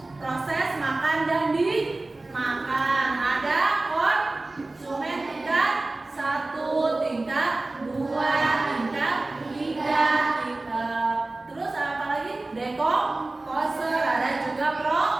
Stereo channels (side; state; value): left; quieter; 3.0 dB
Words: proses makan dan dimakan. Ada konsumen tingkat 1, tingkat 2, tingkat 3, terus apa lagi? Dekomposer, ada juga